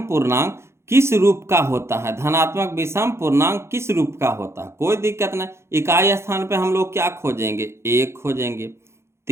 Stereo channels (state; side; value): late; left; 0.13 ms